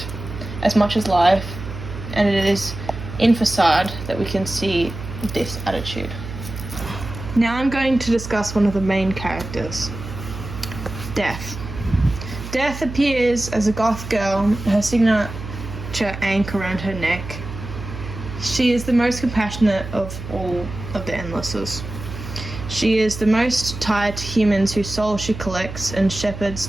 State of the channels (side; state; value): right; noise; hum, 10 dB below the sound